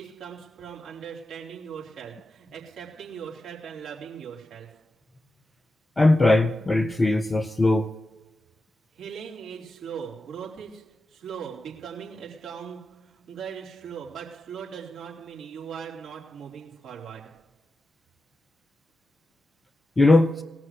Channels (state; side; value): normal; both; correlation 0.91